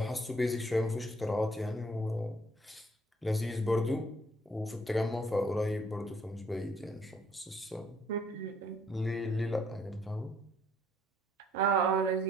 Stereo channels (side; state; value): both; normal; correlation 0.65